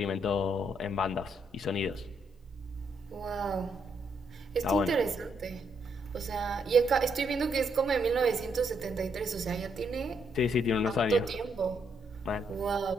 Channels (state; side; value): normal; both; correlation 0.75